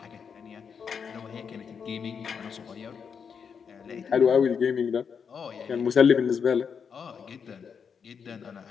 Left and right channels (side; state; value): right; quieter; 6.5 dB